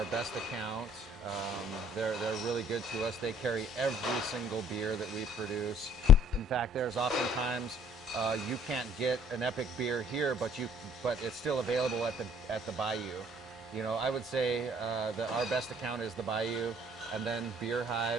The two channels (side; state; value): both; normal; correlation 0.58